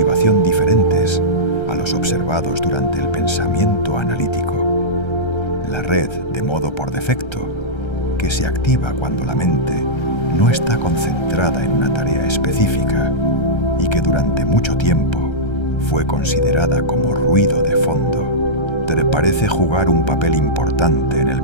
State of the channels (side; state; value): right; late; 1.3 ms